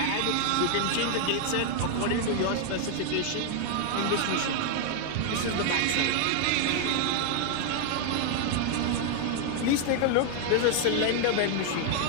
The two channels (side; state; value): both; different; correlation 0.00